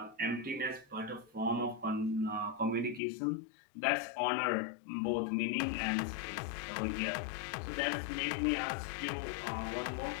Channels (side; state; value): right; drops out; at 3.0 s